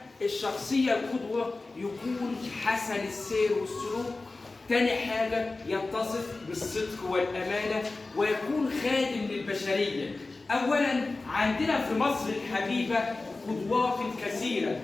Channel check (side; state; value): right; quieter; 3.4 dB